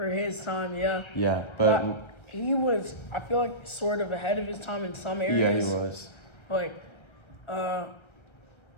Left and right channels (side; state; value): right; late; 1.3 ms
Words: his time, yeah. Yeah, but he was, I feel like, sort of ahead of his time in some areas. Yeah, he was.